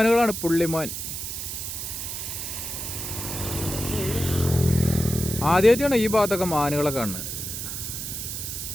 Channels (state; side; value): noise; right; hiss, 5 dB below the sound